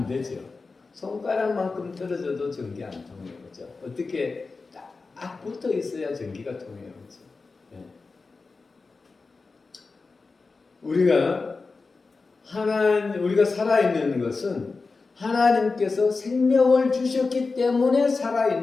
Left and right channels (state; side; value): quieter; right; 4.1 dB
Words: 되죠. 손가락만큼 떨어져도 전기 안 통해요, 그렇죠? 어떻게 딱 붙어 있어야 전기가 통해요, 그렇죠? 우리가 살아있는 것은 하나님께서 생명을 주셨기 때문에